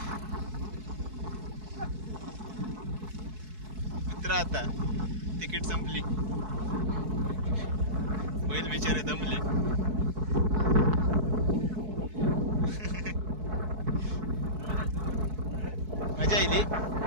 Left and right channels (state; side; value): late; left; 4.6 ms